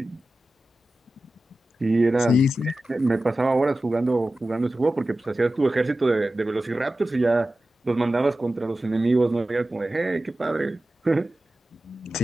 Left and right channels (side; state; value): both; normal; correlation 0.94